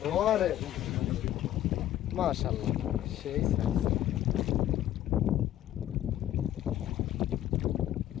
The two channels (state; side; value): quieter; right; 12.5 dB